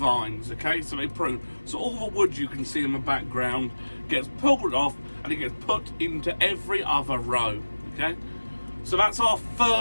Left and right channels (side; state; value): both; inverted; correlation -1.00